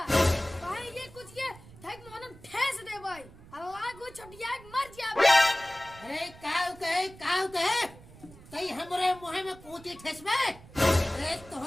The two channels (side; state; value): right; noise; rumble, 20 dB below the sound